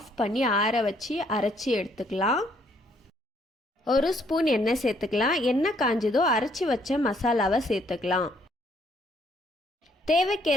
பண்ணி ஆற வச்சு அரைச்சி எடுத்துக்கலாம். 1 ஸ்பூன் எண்ணெய் சேர்த்துக்கலாம். எண்ணெய் காஞ்சதோ அரைச்சி வச்ச மசாலாவை சேர்த்துக்கலாம்.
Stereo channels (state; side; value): normal; both; correlation 0.67